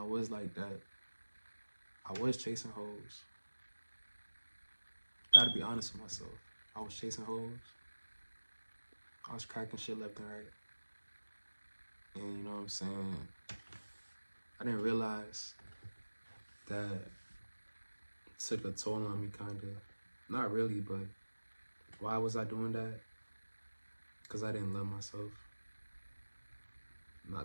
was like that. I was chasing hoes. Gotta be honest with myself. I was chasing hoes. I was cracking shit left and right. And you know what I'm saying? I didn't realize that it took a toll on me, kinda. Not really, but why was I doing that? Because I didn't love myself.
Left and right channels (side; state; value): both; inverted; correlation -1.00